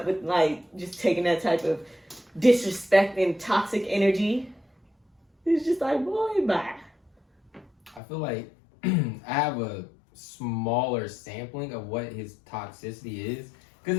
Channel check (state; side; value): drops out; right; at 8.0 s